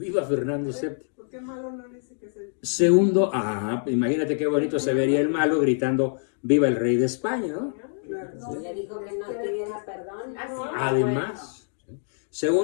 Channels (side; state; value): right; silent; digital silence